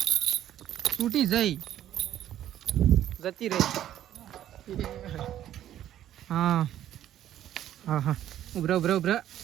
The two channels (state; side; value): quieter; left; 11.8 dB